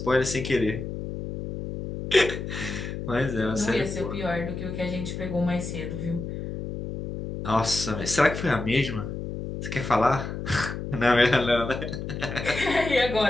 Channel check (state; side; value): noise; left; hum, 6 dB below the sound